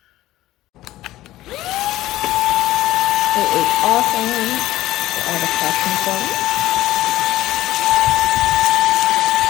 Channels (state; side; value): quieter; right; 15.5 dB